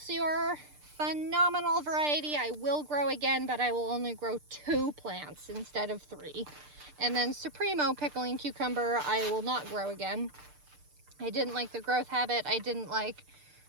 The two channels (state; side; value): late; left; 6.7 ms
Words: Phenomenal variety. I will grow again, but I will only grow 2 plants instead of 3. And then Supremo pickling cucumber, I will not grow again. I didn't like the growth habit. I didn't like